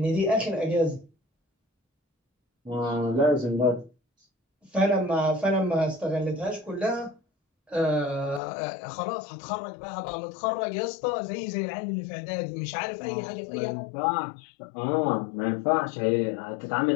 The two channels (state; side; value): drops out; right; at 8.4 s